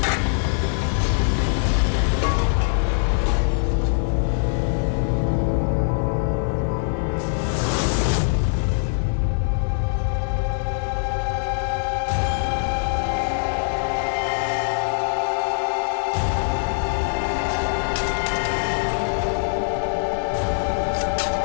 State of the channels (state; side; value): silent; right; digital silence